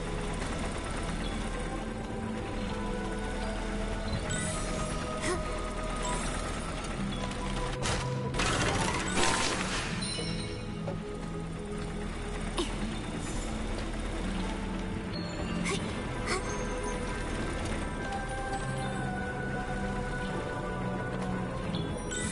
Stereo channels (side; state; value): both; identical; correlation 1.00